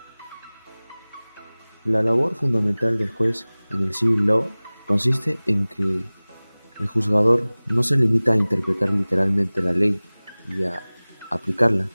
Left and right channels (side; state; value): both; inverted; correlation -1.00